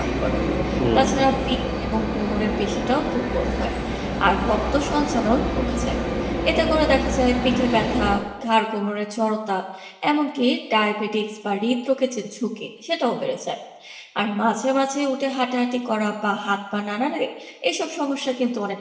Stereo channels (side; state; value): both; identical; correlation 1.00